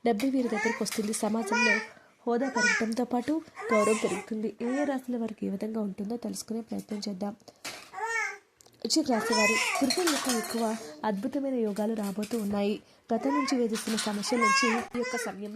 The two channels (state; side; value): identical; both; correlation 1.00